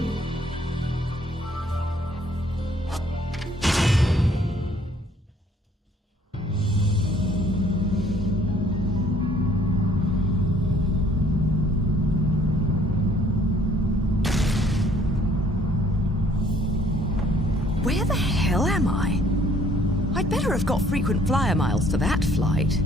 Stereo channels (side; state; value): both; normal; correlation 0.60